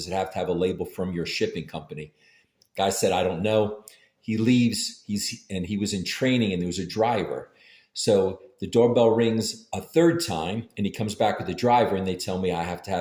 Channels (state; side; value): identical; both; correlation 1.00